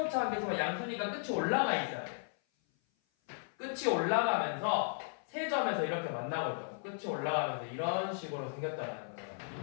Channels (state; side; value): silent; right; 54 dB below the other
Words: 한계수가 양수니까 끝이 올라가 있어야 돼. 끝이 올라가면서 세 점에서 이렇게 만나고 있다고. 끝이 올라가면서 이런 식으로 생겼다는 거예요.